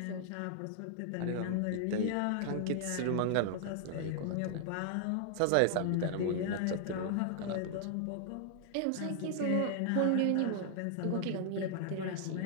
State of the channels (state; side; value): different; both; correlation -0.01